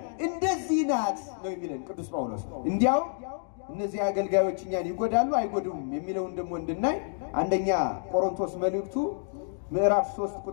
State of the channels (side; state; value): right; silent; digital silence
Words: እንደዚህ ናት ነው የሚለን ቅዱስ ጳውሎስ። እንዲያው እነዚህ አገልጋዮች እኛን ይጎዳሉ አይጎዱም የሚለውን ደግሞ እንድናይ አንደኛ ቆሮንቶስ መልእክቱ ምዕራፍ 3